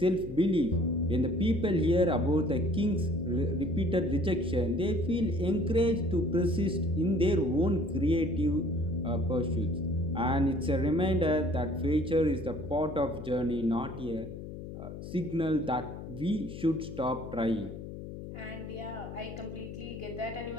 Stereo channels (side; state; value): left; noise; hum, 10 dB below the sound